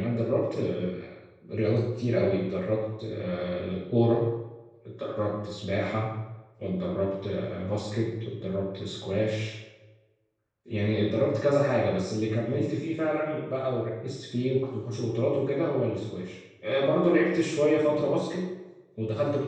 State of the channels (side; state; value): both; identical; correlation 1.00